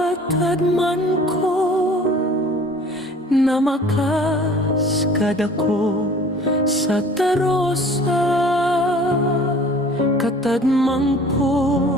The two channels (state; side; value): normal; both; correlation 0.48